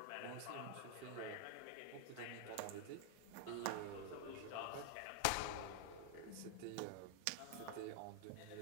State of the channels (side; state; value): both; different; correlation 0.00